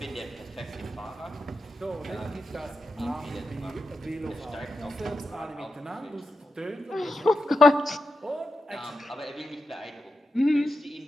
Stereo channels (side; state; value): both; normal; correlation 0.88